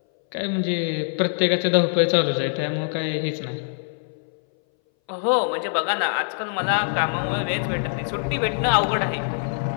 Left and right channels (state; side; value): silent; right; 60 dB below the other